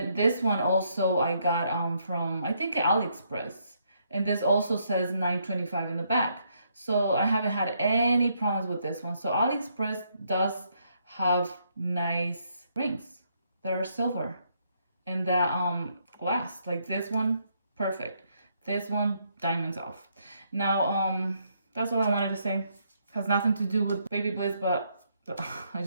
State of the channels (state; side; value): inverted; both; correlation -0.74